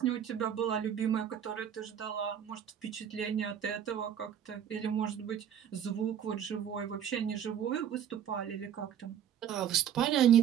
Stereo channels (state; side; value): quieter; left; 9.3 dB